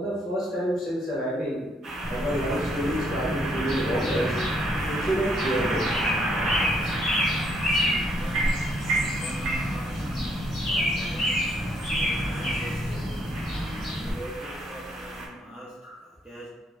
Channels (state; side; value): normal; both; correlation 0.70